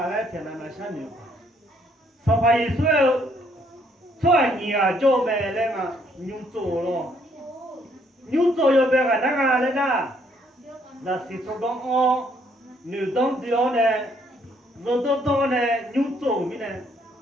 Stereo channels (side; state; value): both; normal; correlation 0.68